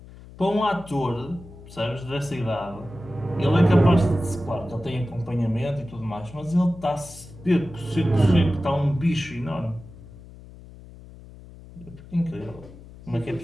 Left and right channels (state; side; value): noise; left; hum, 18 dB below the sound